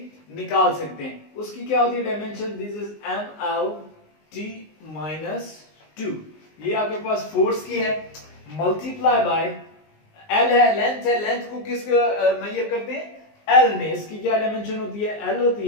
निकाल सकते हैं। उसकी क्या होती है डायमेंशन, दिस इज mlt -2। ये आपके पास फोर्स की है, मल्टीप्लाई बाय l है, लेंथ है, लेंथ को किस मेजर करते हैं, l में, इसकी क्या डायमेंशन होती है, l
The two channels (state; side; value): late; right; 19 ms